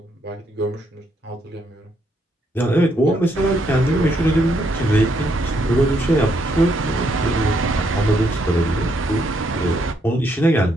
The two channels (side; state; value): both; normal; correlation 0.74